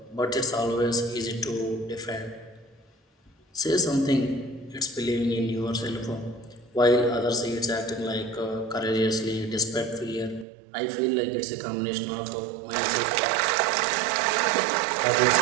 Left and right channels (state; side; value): drops out; left; at 10.5 s